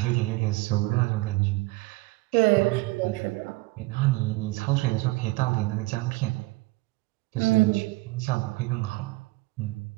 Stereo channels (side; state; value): left; quieter; 22.0 dB